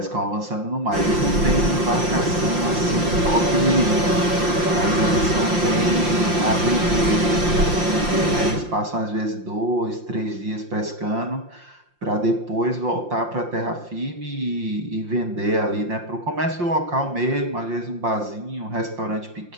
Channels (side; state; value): left; late; 5.7 ms